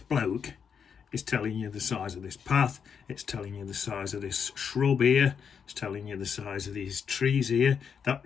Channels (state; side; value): quieter; right; 6.9 dB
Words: is telling you the size of this path, it's telling you the size of this shrub here, it's telling you the size of these trees here. That